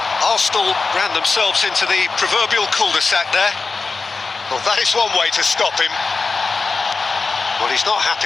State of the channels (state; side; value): quieter; right; 4.2 dB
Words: Arsenal ran themselves into the proverbial cul-de-sac there. Well, that is one way to stop him. Well, he's not